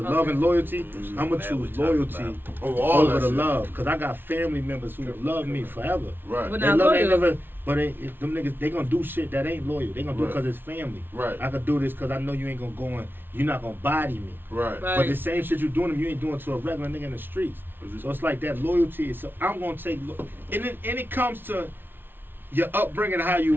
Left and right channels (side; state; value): left; late; 0.10 ms